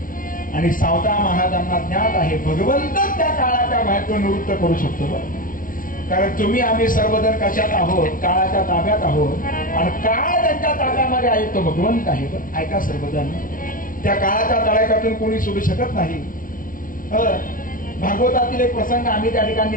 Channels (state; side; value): late; right; 0.39 ms